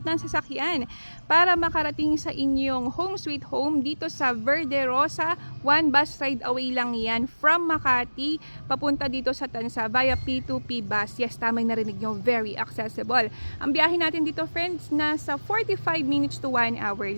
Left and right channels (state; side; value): inverted; both; correlation -1.00